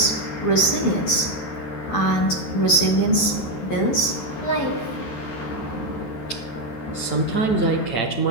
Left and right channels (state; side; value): late; right; 12 ms